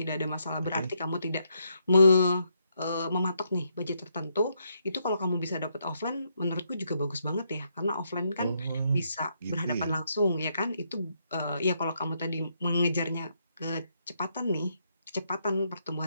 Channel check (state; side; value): inverted; both; correlation -0.77